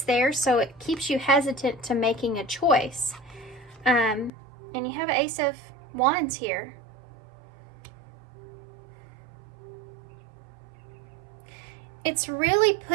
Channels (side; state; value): left; drops out; at 4.3 s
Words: there. So it keeps you hesitant to making a choice. And you have an Ace of Wands here. It's really